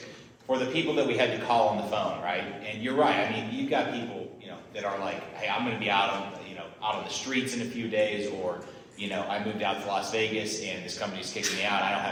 For the people that we had to call on the phone, right? And you're right, you've got people, that are hey, I'm going to be out on the streets in a few days, or, I moved out to Las Vegas and this company's kicking me out. I don't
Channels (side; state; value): both; identical; correlation 1.00